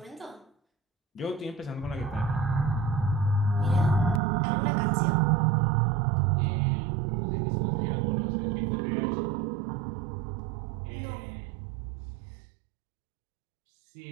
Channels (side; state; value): left; drops out; at 4.2 s